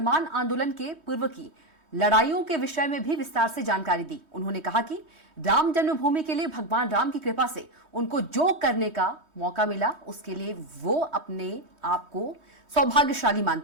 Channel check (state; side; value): late; left; 3.2 ms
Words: आंदोलन के पूर्व की लड़ाइयों के विषय में भी विस्तार से जानकारी दी। उन्होंने कहा कि राम जन्मभूमि के लिए भगवान राम की कृपा से उनको जो करने का मौका मिला उसके लिए वो अपने आप को सौभाग्यशाली